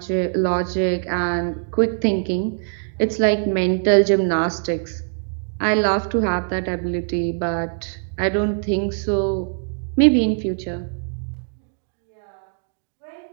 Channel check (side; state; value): left; silent; digital silence